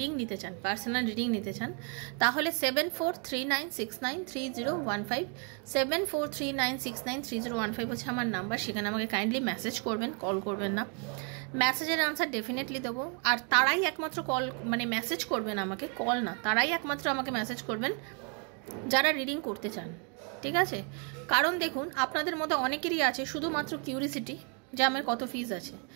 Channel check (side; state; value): left; quieter; 38.8 dB